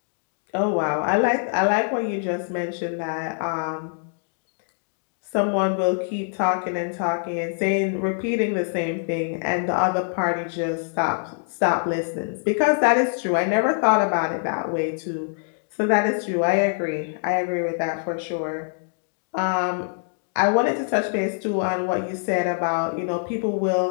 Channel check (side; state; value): right; silent; digital silence